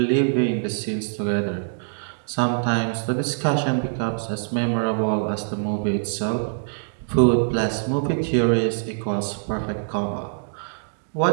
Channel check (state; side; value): silent; left; digital silence